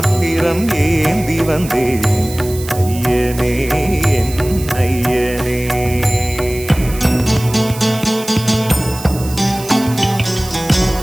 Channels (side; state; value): right; noise; hiss, 14 dB below the sound